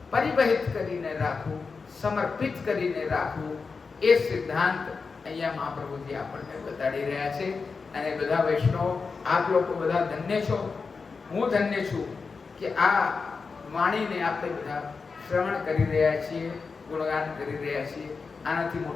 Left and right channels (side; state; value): right; quieter; 4.8 dB